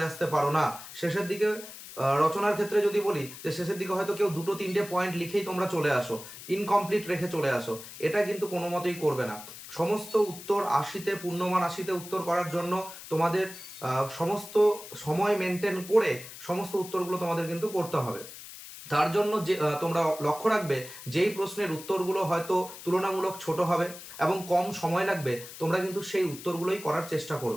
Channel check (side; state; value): left; noise; hiss, 14 dB below the sound